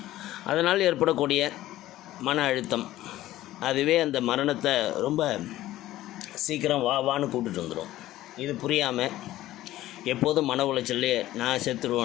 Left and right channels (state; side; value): quieter; right; 15.0 dB